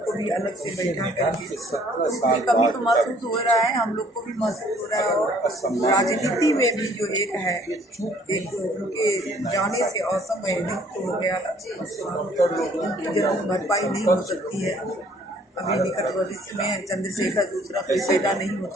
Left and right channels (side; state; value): both; normal; correlation 0.59